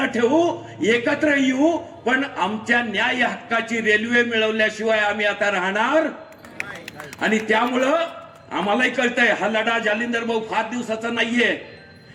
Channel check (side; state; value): both; identical; correlation 1.00